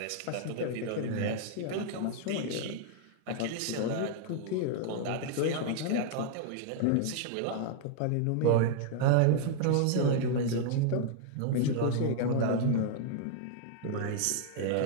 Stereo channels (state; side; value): different; both; correlation 0.00